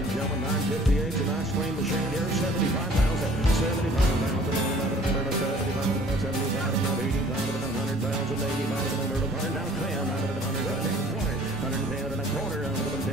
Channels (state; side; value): normal; both; correlation 0.53